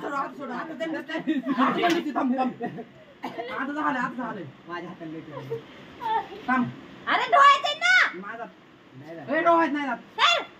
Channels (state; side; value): identical; both; correlation 1.00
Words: आता झालं माझ्या हाताला थांब अरे डोळ्यात ना माझा ए डोळ्यात नाही जात